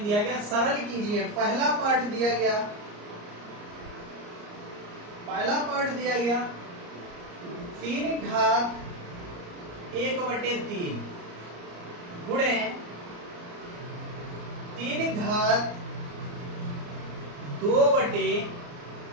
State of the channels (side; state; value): left; late; 34 ms